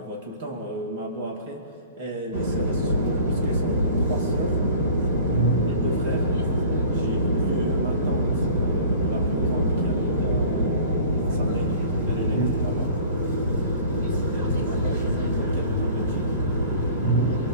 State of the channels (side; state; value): both; inverted; correlation -0.45